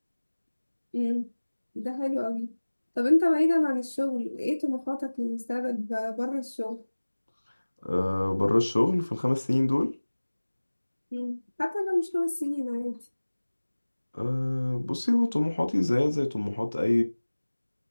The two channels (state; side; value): inverted; both; correlation -1.00